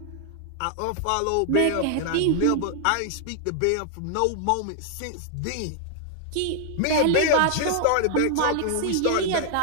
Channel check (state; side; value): different; both; correlation 0.00